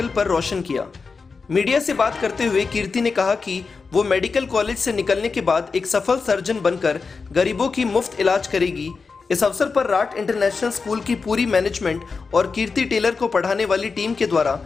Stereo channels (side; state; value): right; quieter; 4.7 dB